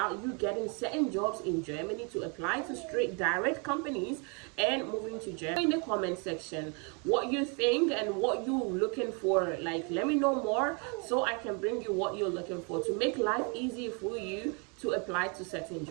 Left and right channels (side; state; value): left; quieter; 35.0 dB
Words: you getting certain jobs in Germany to apply to straight direct companies and moving to Germany. In the comment section what you think and what you're looking for. Like, let me know more so I can bring you what you're looking for to make life easy for you to apply to certain